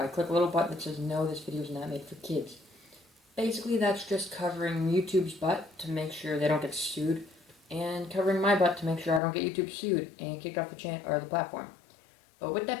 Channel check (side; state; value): right; drops out; at 9.2 s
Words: click a little button that says, no, this video is not made for kids. Basically, that's just covering YouTube's butt to make sure they don't get sued, and covering my butt to make sure I don't get YouTube sued and kicked off the channel or the platform. But with